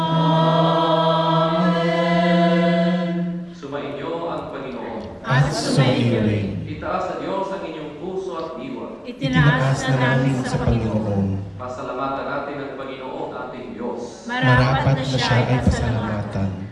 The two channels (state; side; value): identical; both; correlation 1.00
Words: Sumainyo ang Panginoon. At sumaiyo rin. Itaas sa Diyos ang inyong puso at diwa. Itinaas na namin sa Panginoon. Pasalamatan natin ang Panginoon ating Diyos. Marapat na siya ay pasalamatan.